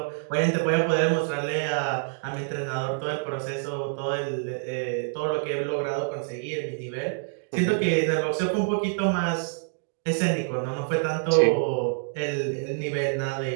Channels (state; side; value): silent; left; digital silence